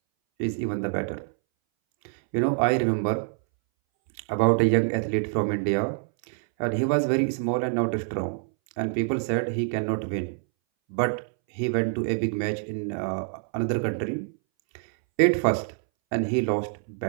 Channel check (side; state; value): left; silent; 61 dB below the other